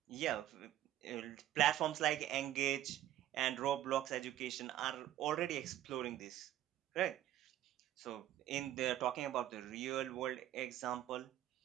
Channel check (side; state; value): left; quieter; 12.8 dB